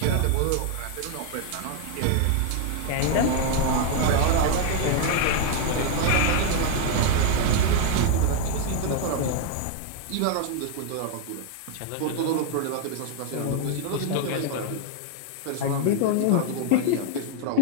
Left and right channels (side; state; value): both; different; correlation 0.00